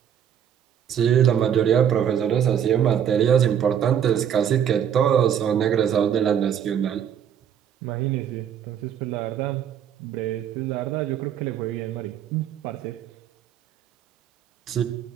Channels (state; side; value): quieter; left; 9.0 dB